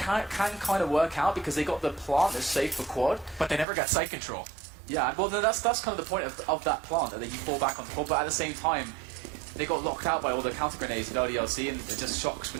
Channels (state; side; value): drops out; left; at 3.7 s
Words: kind of work out because they got the plant that's safe for quad. But they never got site control. Yeah, well, that's kind of the point of that plant, that you fall back on the quad. But at the same time, they got locked out by all the counter grenades at LDLC, and it just Shocks